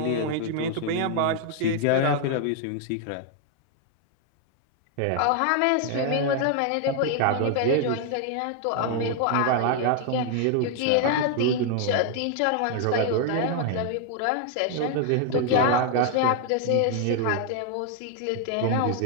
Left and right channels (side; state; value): both; different; correlation 0.00